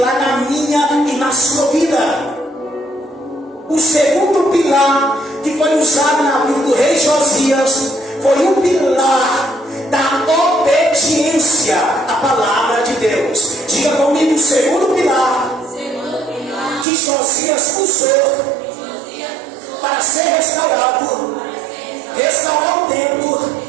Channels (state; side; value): drops out; left; at 16.9 s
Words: na minha e na sua vida. O segundo pilar que foi usado na vida do rei Josias foi o pilar da obediência à palavra de Deus. Diga comigo, o segundo pilar que Josias usou para ser restaurado, restaurar o templo,